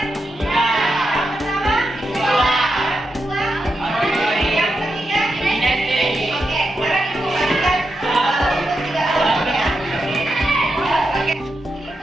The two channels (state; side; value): normal; both; correlation 0.86